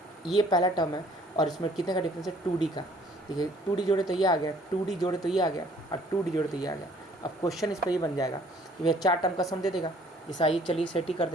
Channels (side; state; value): both; normal; correlation 0.58